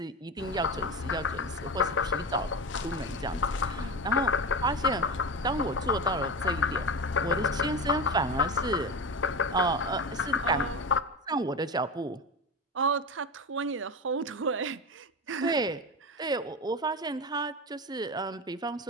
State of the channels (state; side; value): normal; both; correlation 0.23